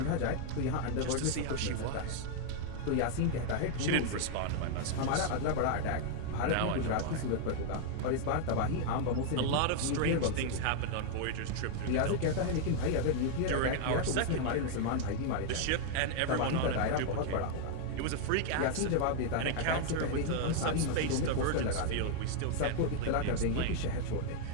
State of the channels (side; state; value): both; different; correlation 0.00